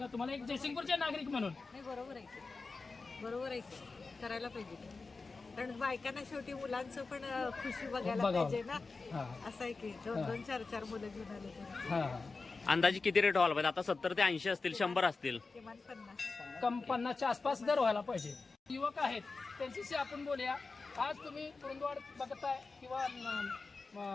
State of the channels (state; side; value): quieter; right; 4.0 dB